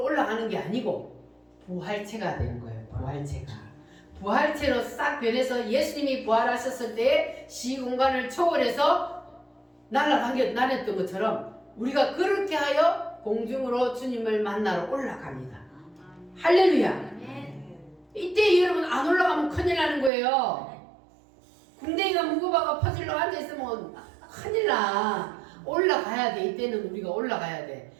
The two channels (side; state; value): left; drops out; at 20.1 s